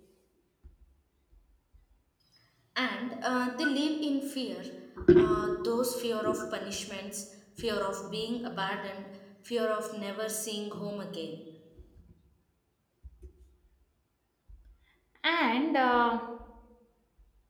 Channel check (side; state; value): both; identical; correlation 1.00